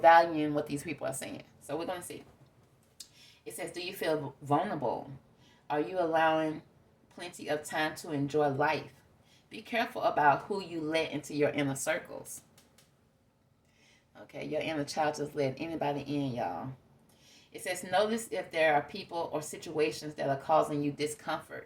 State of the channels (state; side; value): identical; both; correlation 1.00